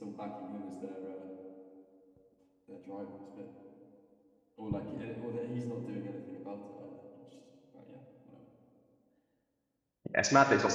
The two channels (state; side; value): identical; both; correlation 1.00